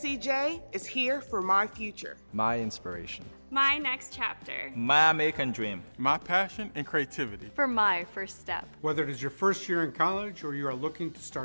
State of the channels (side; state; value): both; inverted; correlation -1.00